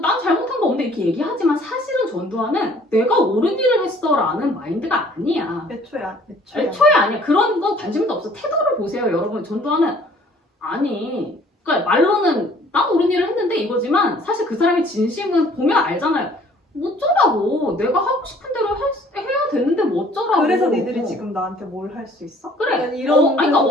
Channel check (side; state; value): both; normal; correlation 0.56